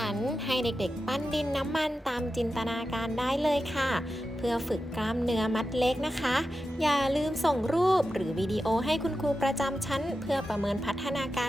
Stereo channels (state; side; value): normal; both; correlation 0.91